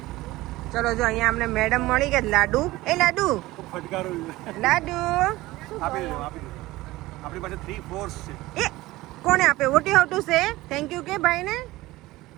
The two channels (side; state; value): left; quieter; 18.6 dB